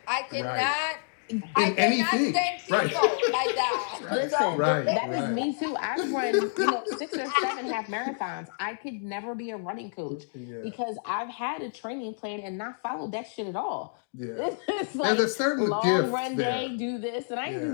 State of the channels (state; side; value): silent; right; digital silence